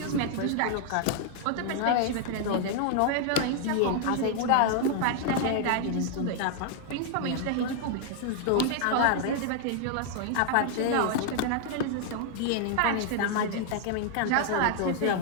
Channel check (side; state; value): both; different; correlation 0.00